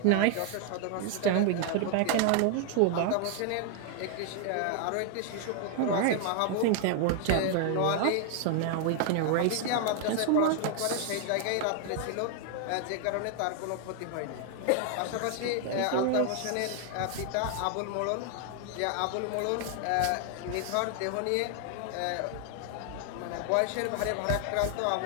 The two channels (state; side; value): different; both; correlation 0.00